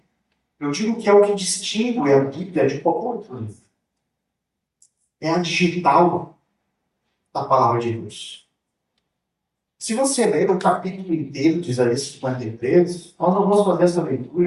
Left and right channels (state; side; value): identical; both; correlation 1.00